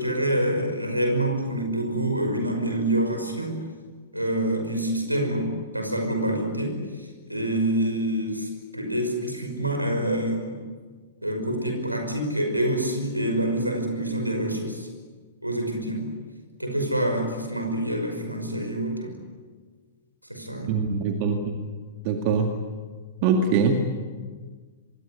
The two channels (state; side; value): inverted; both; correlation -0.40